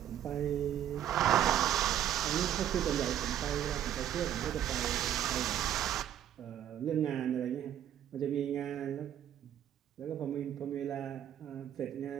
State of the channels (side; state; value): left; quieter; 10.7 dB